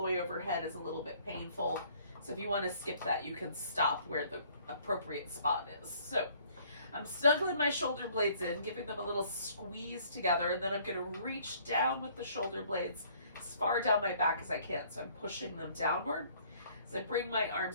way overhead is a little bit painful. So if you want to skip that, you can stop where the appropriate spot is. So I'm snuggling my shoulder blades in, giving them a little squeeze together, and then I'm going to reach down with the shoulder blades as far down my back as I can. So I'm pushing them downward. As I bring my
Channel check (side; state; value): both; inverted; correlation -0.59